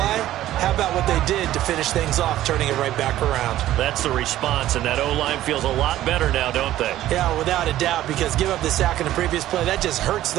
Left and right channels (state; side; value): quieter; left; 13.8 dB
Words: How about what they did to finish things off, turning it right back around? That's the response, and that O-line feels a lot better now, don't they? Yeah, without a doubt, because give up the sack in the previous play, that just hurts